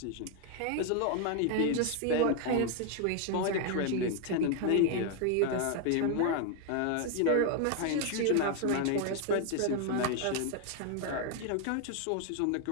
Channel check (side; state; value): both; different; correlation 0.01